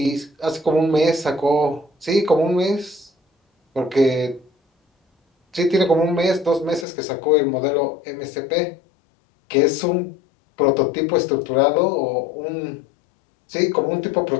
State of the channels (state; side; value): drops out; right; at 6.9 s